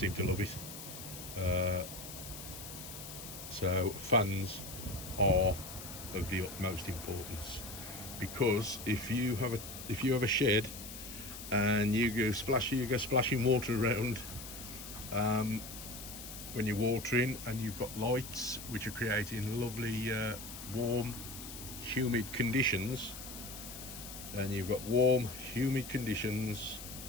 to love it. So fans are of the utmost importance, because if you have a shed and you go splashing water around when you're watering, and you've got lights which are creating lovely warm, humid conditions, and you've got warm, humid conditions,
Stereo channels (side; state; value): left; noise; hiss, 11 dB below the sound